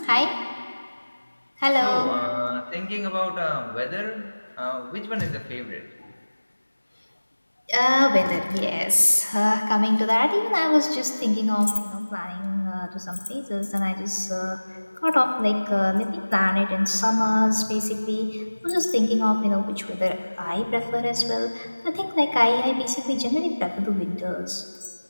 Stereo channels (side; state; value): both; inverted; correlation -1.00